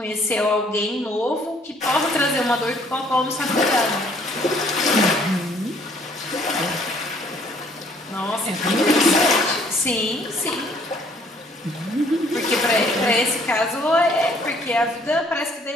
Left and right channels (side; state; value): both; normal; correlation 0.61